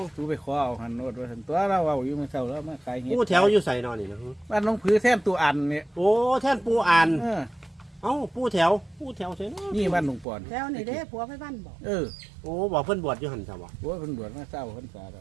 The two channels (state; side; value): drops out; left; at 10.2 s